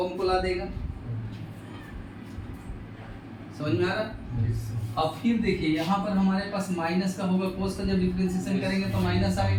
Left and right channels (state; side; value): identical; both; correlation 1.00